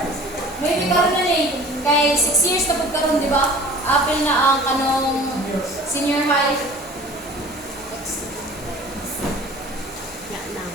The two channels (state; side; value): normal; both; correlation 0.45